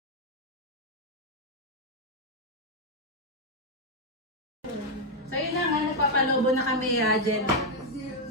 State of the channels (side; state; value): both; normal; correlation 0.00